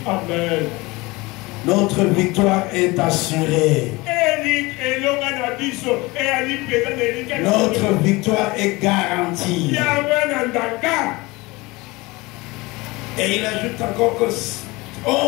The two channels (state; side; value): quieter; right; 22.9 dB